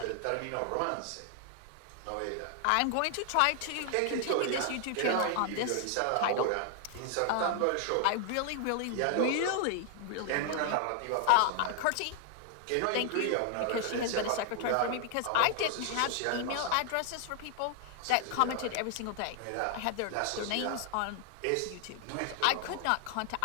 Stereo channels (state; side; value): different; both; correlation 0.00